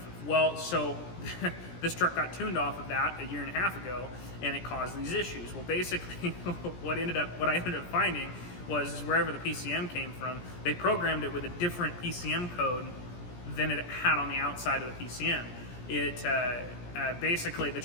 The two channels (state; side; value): late; right; 17 ms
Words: Well, so this truck got tuned off of that 1.5 years ago, and it caused these issues. Well, basically, what I ended up finding was wherever the PCM came from, they programmed it with a different PCM code than it had on the outside of the PCM. It basically, the